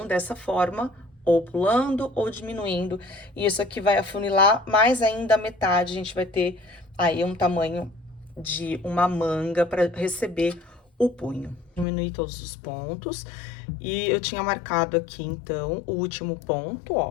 Dessa forma, ou pulando ou diminuindo. E isso aqui vai afunilar mais ainda a metade. A gente vai ter aí um tamanho de uma manga para receber o punho. Diminuir todos os pontos. E eu tinha marcado aqui, então, o último ponto,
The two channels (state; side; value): drops out; right; at 11.9 s